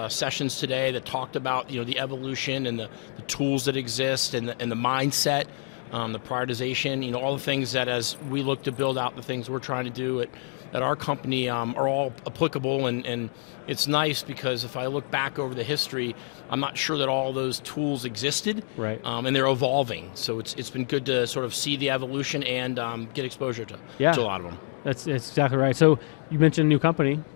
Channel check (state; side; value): silent; right; 60 dB below the other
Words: sessions today that talked about the evolution and the tools that exist and the mindset, the prioritization, all the things that as we look to build out the things we're trying to do at our company are all applicable, and it's nice because if I look back over the history, I'm not sure that all those tools existed, and they're evolving. So it's been good to sort of see the evolution and get exposure to a lot of them. So, it's a new company.